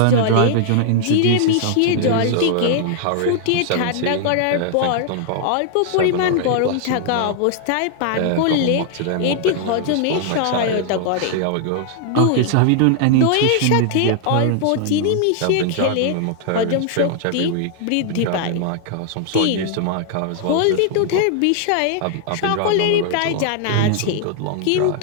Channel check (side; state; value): both; different; correlation 0.00